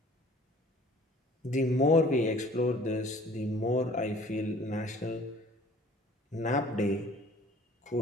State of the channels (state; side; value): normal; both; correlation 0.51